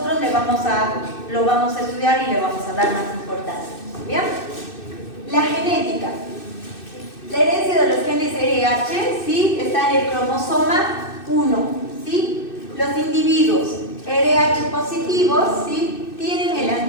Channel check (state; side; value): late; right; 2.6 ms